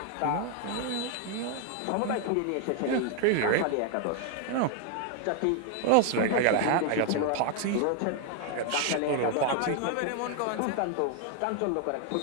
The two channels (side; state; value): both; different; correlation 0.00